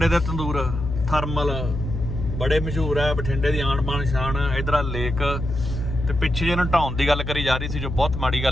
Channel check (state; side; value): noise; left; hum, 5 dB below the sound